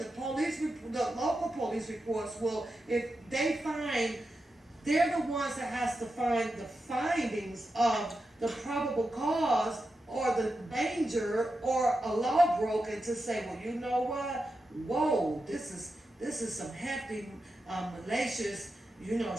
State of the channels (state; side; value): normal; both; correlation 0.89